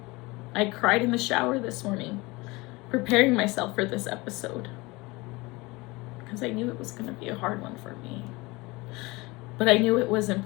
I cried in the shower this morning, preparing myself for this episode, because I knew it was gonna be a hard one for me. But I knew it was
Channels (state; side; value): quieter; right; 23.4 dB